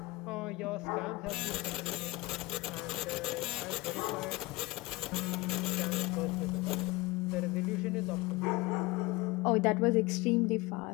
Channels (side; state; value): right; quieter; 21.8 dB